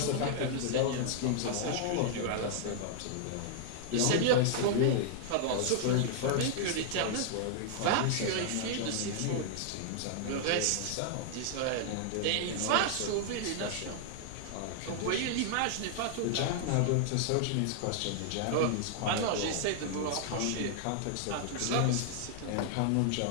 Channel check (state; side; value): different; both; correlation -0.01